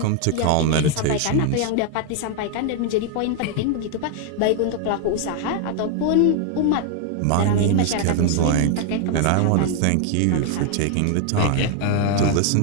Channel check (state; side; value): different; both; correlation 0.00